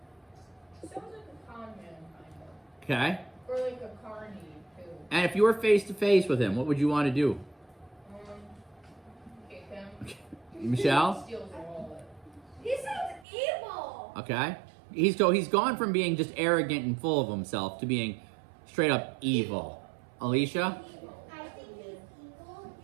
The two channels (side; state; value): left; drops out; at 13.2 s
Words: Sounds like a con man, kind of. Okay? Or like a carny, too. And if you were face to face with him, what would you want to do? Kick him. Michelle? Steals the wallet. He sounds evil! Okay. He's gone from being just arrogant and full of himself to being straight up evil. Alicia? I think he's evil